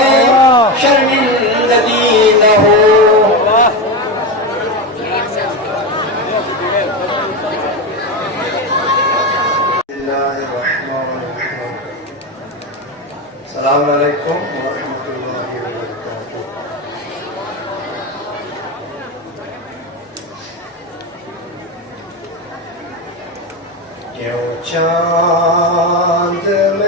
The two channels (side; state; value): both; normal; correlation 0.16